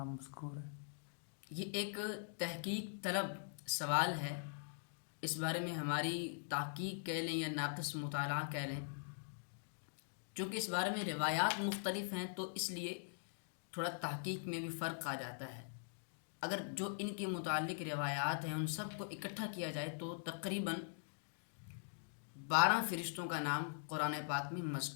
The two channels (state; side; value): silent; right; digital silence